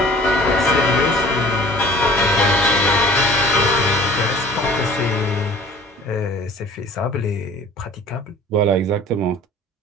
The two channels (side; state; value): both; normal; correlation 0.48